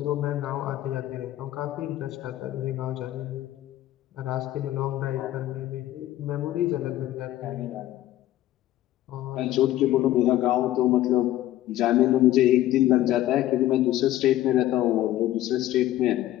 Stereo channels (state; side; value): quieter; right; 14.2 dB